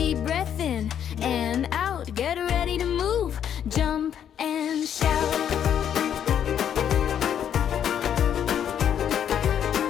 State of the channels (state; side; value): quieter; right; 9.2 dB